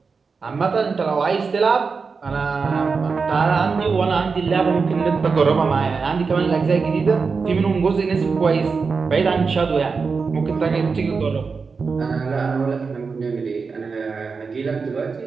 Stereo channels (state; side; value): quieter; left; 4.9 dB